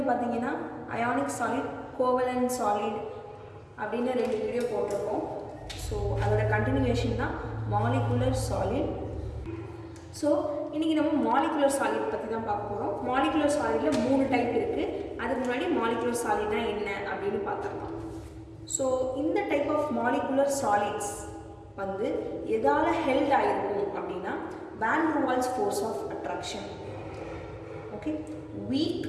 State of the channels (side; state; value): both; identical; correlation 1.00